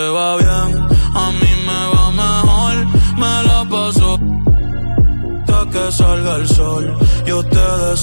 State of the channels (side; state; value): both; inverted; correlation -1.00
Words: va bien, a mí me va mejor. Me la paso hasta que salga el sol. Yo te